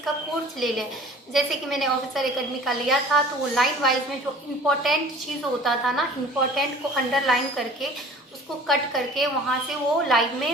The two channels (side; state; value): both; normal; correlation 0.46